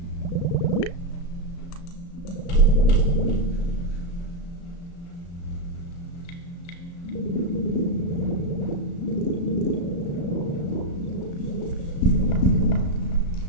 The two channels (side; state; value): right; late; 35 ms